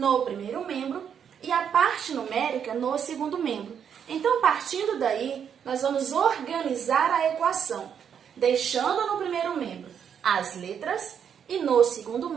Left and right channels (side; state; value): left; quieter; 8.0 dB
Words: primeiro membro e a parte numérica no segundo membro. Então, partindo daí, nós vamos organizar a equação, deixando no primeiro membro as letras e no segundo